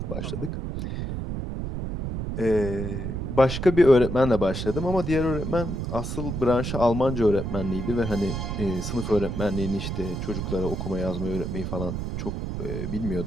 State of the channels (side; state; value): right; noise; rumble, 4 dB below the sound